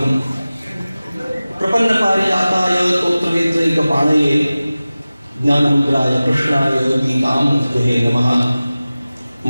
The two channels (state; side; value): inverted; both; correlation -0.97